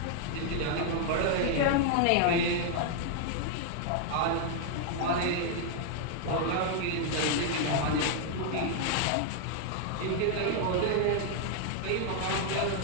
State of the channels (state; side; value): different; both; correlation 0.00